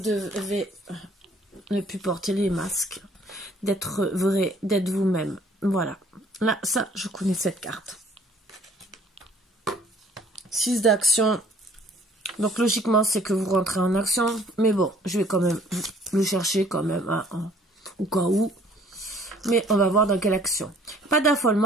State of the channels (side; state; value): both; normal; correlation 0.57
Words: ne plus porter les masques. D'être vrai, d'être vous-même. Voilà. Là, ça, je connais cette carte. 6 d'action. Donc logiquement, c'est que vous rentrez en action. Mais bon, je vais quand même le chercher quand même au cas où. Mais on va voir dans quelle action. Pas